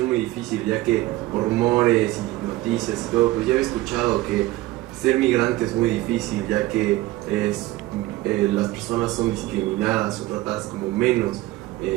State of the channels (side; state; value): left; quieter; 17.6 dB